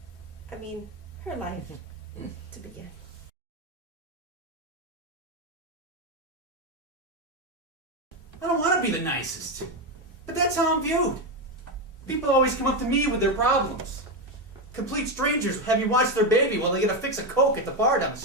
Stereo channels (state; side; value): normal; both; correlation 0.10